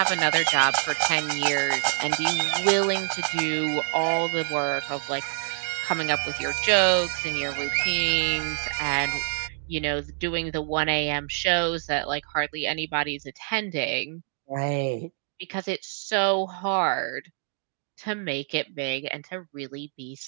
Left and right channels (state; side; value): silent; left; digital silence